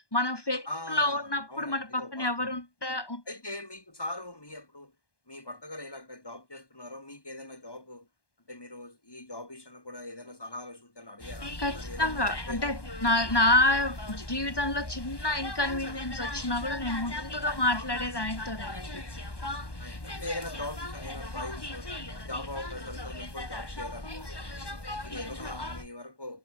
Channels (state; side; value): late; right; 1.2 ms